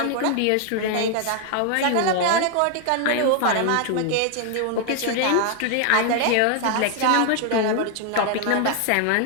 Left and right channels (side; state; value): both; different; correlation 0.00